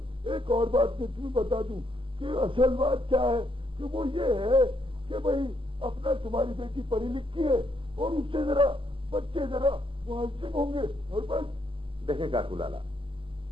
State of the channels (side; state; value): left; late; 0.25 ms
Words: एक और बात मैं तुम्हें बता दूं कि असल बात क्या है कि वो ये है कि भाई अपना तुम्हारी बेटी पढ़ी लिखी है और उससे जरा बच्चे जरा मुहज्जिब होंगे और बस। देखें काकू लाला,